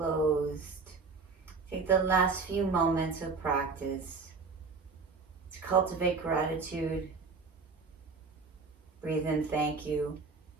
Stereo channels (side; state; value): left; quieter; 4.6 dB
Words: Take the last few moments of practice to cultivate gratitude. Breathe in, thank you.